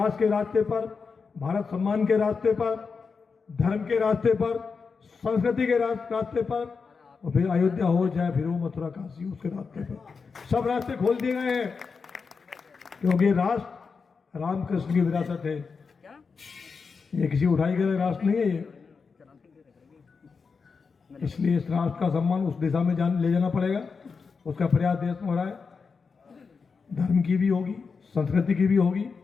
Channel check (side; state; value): right; quieter; 5.1 dB